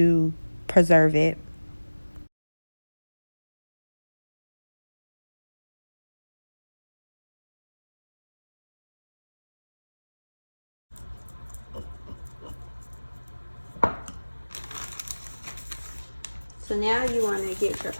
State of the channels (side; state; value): both; inverted; correlation -1.00